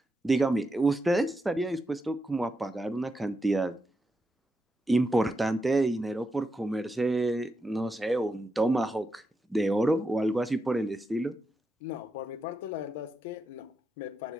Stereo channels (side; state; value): both; normal; correlation 0.86